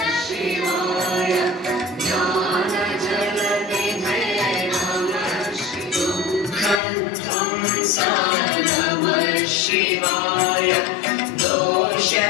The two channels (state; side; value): drops out; right; at 6.8 s